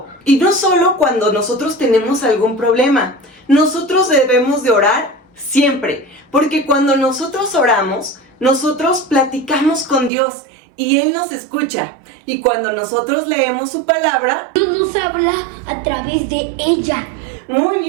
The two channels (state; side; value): drops out; left; at 10.1 s